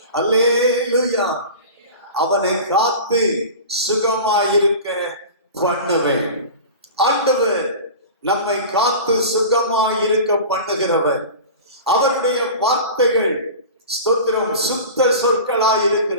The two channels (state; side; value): inverted; both; correlation -0.34